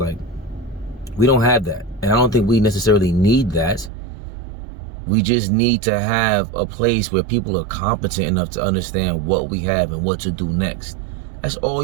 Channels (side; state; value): left; drops out; at 3.9 s